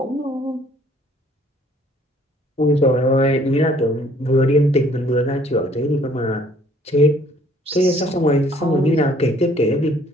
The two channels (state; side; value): normal; both; correlation 0.59